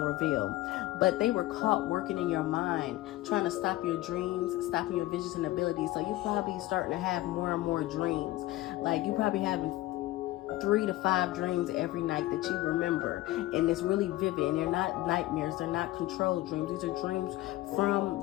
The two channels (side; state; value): right; quieter; 17.0 dB